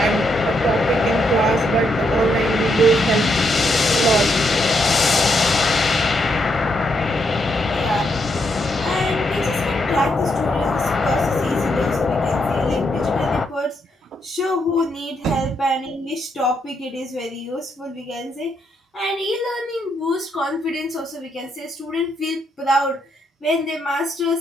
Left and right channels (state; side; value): normal; both; correlation 0.78